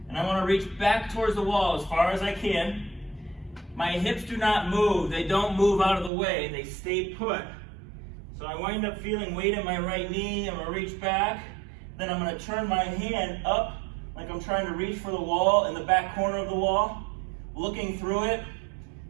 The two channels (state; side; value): drops out; left; at 6.1 s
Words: And I want to reach back towards the wall as far as I can. My hips do not move. They don't move out of the way. They stay put. So I wind up feeling weight in my right knee. I'm going to reach back. Then I'm going to turn my hand up like I'm trying to reach for the wall in the back corner of the wall, looking through it.